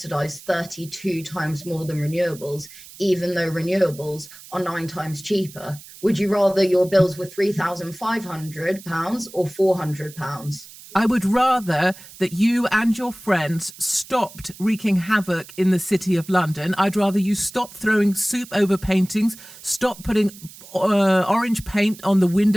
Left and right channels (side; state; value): right; noise; hiss, 18 dB below the sound